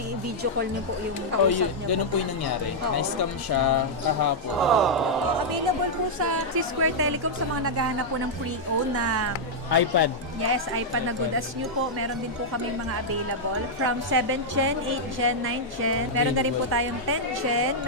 video call niyo po yung kausap niyo. Ganun po yung nangyari. Na-scam siya kahapon. Available po sa Square Telecom sa mga naghahanap po ng pre-owned na iPad. Yes, iPad na good as new po. Meron din po kami mga available. From 7th Gen, 8th Gen, 9th Gen. Meron na rin po tayong 10th Gen.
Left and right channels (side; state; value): both; normal; correlation -0.06